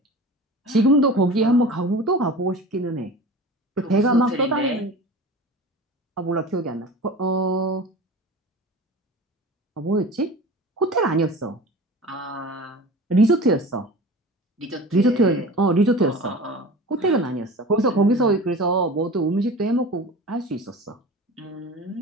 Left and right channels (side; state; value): both; normal; correlation 0.36